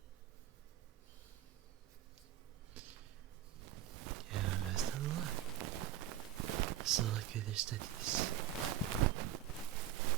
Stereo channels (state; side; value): quieter; left; 11.6 dB